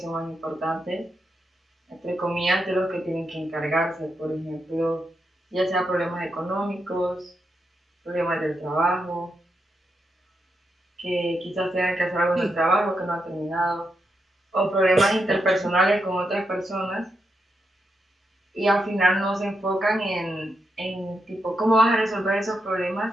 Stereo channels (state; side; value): normal; both; correlation 0.84